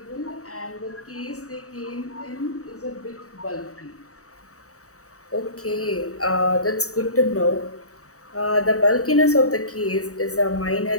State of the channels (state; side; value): late; right; 0.65 ms